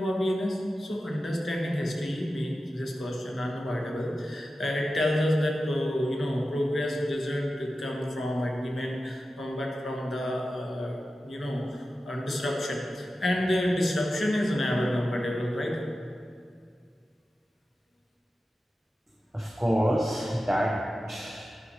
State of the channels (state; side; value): normal; both; correlation 0.93